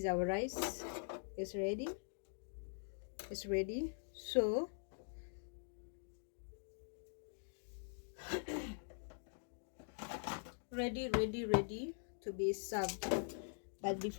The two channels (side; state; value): right; silent; digital silence